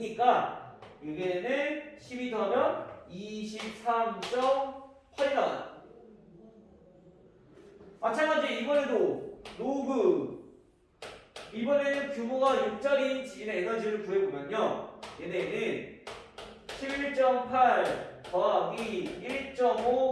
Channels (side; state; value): both; identical; correlation 1.00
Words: 얘네는 12 더하면 23.8이 나와요. 마찬가지 이번에도 로그 이번에는 규모가 6짜리인 지진의 에너지를 구해보면요 얘네는 11.8 더하기 1.5